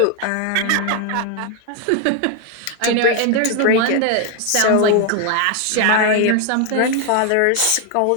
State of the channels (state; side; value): different; both; correlation 0.01